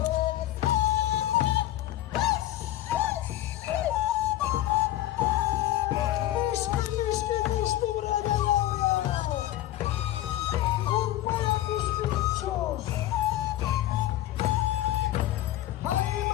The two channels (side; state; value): right; quieter; 14.2 dB